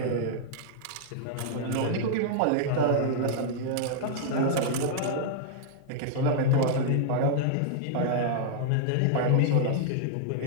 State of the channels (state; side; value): different; both; correlation -0.01